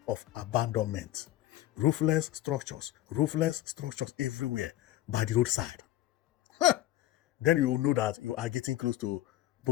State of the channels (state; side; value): quieter; right; 14.5 dB